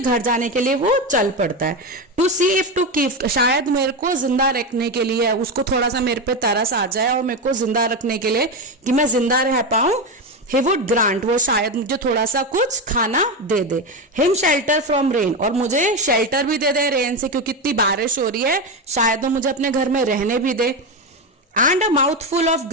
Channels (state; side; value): normal; both; correlation 0.14